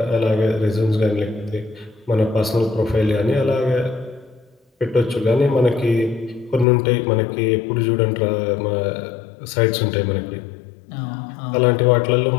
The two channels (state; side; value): drops out; right; at 6.7 s